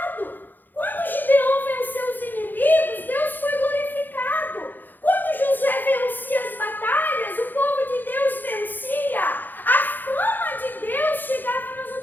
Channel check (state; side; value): late; right; 0.088 ms